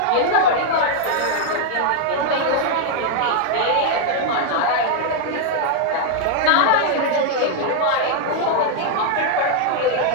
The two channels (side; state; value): both; different; correlation 0.00